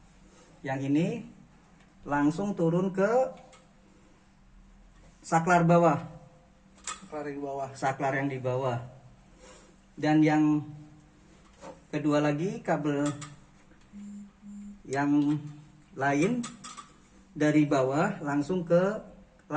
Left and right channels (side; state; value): both; identical; correlation 1.00